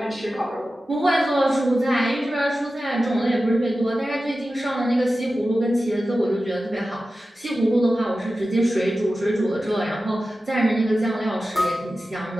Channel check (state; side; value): normal; both; correlation 0.94